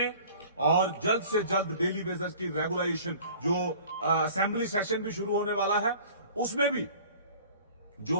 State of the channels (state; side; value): inverted; both; correlation -0.47